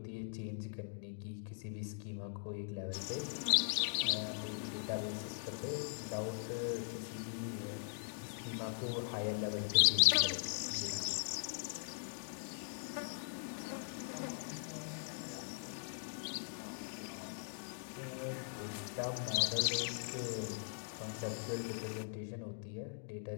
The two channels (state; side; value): silent; right; digital silence